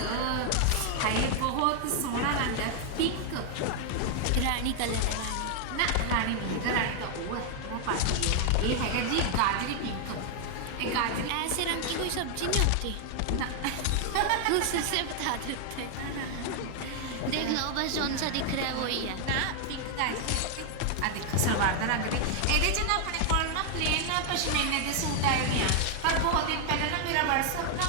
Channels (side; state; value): both; different; correlation 0.00